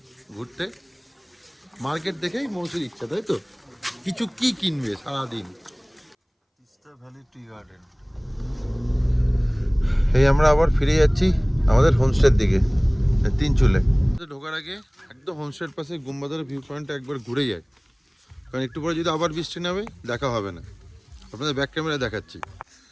ঘুরতে, মার্কেট দেখেই মৌসির ইচ্ছা, তাই তো কিছু কি কিনবে সারাদিন। Teesta valley tea garden. এই আমরা আবার ফিরে যাচ্ছি আমাদের হোমস্টের দিকে, তিনচুলে। ঢোকার আগে একদম হোমস্টের পাশে গুম্বাদার ভিউ পয়েন্টটা একবার ঘুরে যায়, কারণ একটু পরে যদি আবার বৃষ্টি নামে দেখা হবে না। আপনাদের ব্যাক ক্যামেরা দেখাচ্ছি,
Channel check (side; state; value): both; identical; correlation 1.00